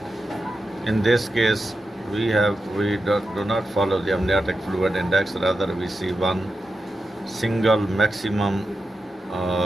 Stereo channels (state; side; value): normal; both; correlation 0.89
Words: In this case, we do not follow the amniotic fluid index. Rather, we see one single maximum